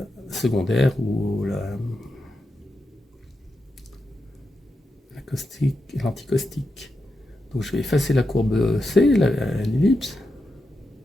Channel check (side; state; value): both; normal; correlation 0.87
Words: secondaire ou la caustique, l'anticaustique. Donc je vais effacer la courbe C, l'ellipse,